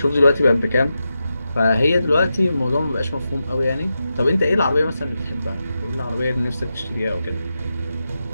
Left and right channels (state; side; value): inverted; both; correlation -0.89